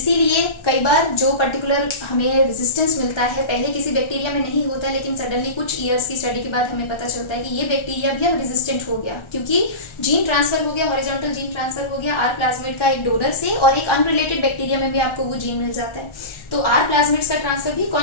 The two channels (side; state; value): right; late; 1.4 ms